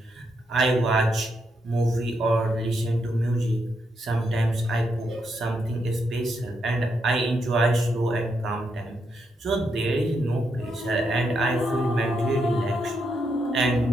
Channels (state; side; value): normal; both; correlation 0.80